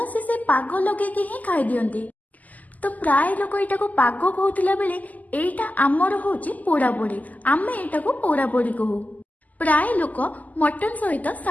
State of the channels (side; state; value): right; late; 0.079 ms